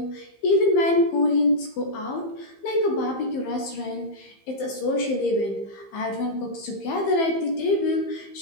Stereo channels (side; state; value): right; late; 15 ms